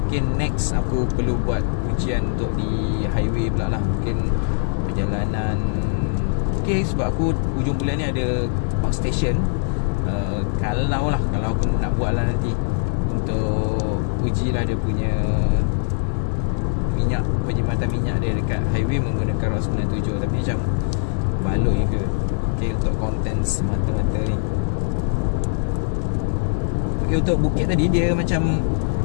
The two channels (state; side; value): silent; right; 61 dB below the other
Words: Mungkin next aku perlu buat ujian untuk di highway pula lah. Mungkin perjalanan sebab aku hujung bulan ni ada outstation. Kalau aku nak buat lah nanti untuk uji lah dia punya minyak, penjimatan minyak dia dekat highway menggunakan RON 97. Tapi macam baloi ke untuk konten semata-mata ni. Untuk bukit tadi dia macam